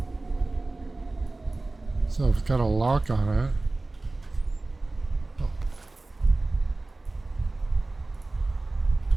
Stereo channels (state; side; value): quieter; left; 3.1 dB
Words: So it's got a lock on it. Oh.